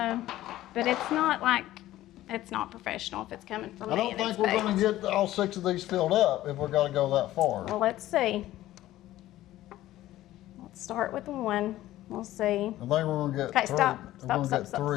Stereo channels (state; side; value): quieter; right; 14.9 dB